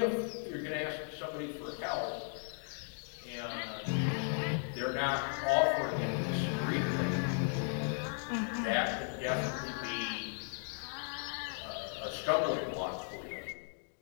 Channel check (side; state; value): right; silent; 54 dB below the other